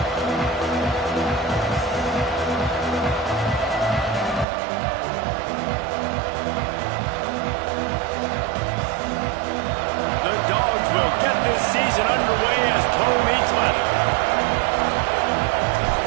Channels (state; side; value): drops out; left; at 4.5 s